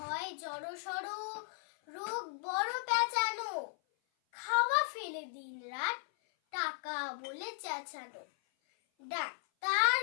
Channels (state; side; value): silent; right; 54 dB below the other